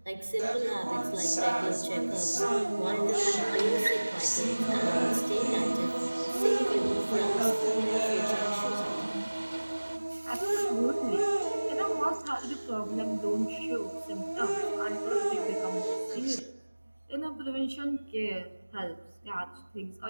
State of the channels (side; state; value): both; inverted; correlation -1.00